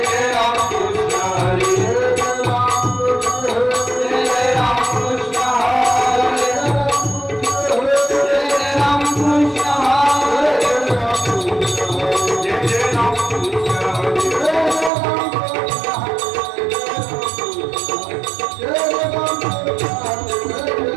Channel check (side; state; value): left; drops out; at 14.9 s